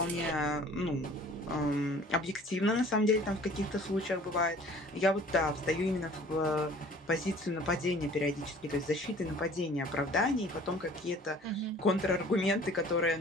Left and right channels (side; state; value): both; normal; correlation 0.50